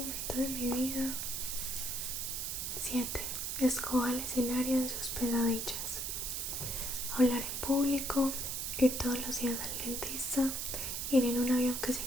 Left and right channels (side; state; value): right; noise; hiss, 2 dB below the sound